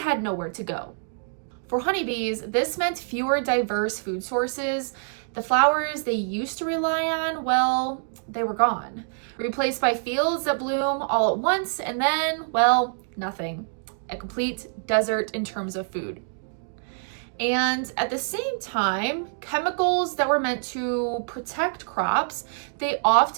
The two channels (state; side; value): silent; left; digital silence